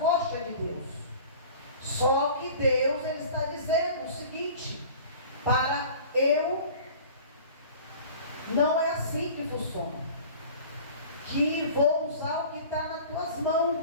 de Deus. Só que Deus, Ele está dizendo o seguinte: para eu, não é assim que funciona. Que vou usar o que está nas tuas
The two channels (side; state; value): both; inverted; correlation -0.43